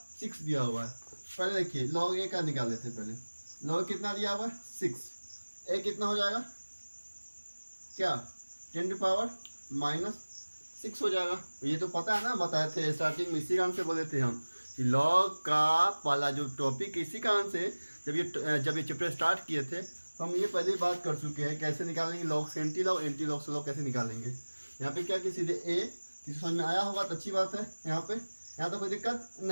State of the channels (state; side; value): inverted; both; correlation -1.00